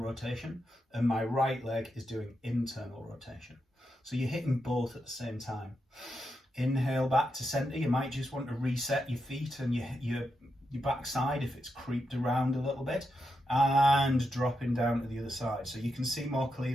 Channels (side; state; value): both; normal; correlation 0.85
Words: rotation and my right leg is doing internal rotation. So you're hitting both at the same time. Inhale back to center. You might just want to reset your feet and your backside if it's creeped around a little bit, and dropping down to the other side. So you can see more